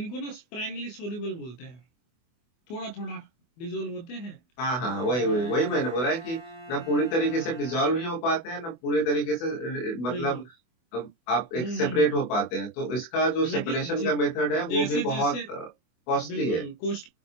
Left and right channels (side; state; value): right; late; 24 ms